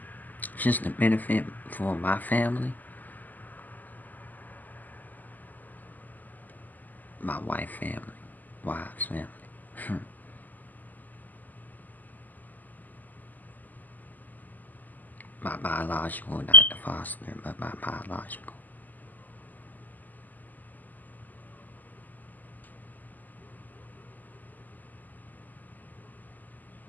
Just to benefit for my family. My wife's family. My biological, not the foster, but my biological.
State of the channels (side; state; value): right; late; 0.083 ms